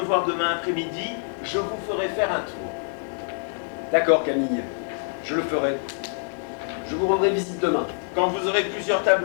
voir demain après-midi, je vous ferai faire un tour. D'accord, Camille. Je le ferai. Je vous rendrai visite demain. Quand vous aurez plusieurs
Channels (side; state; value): right; silent; digital silence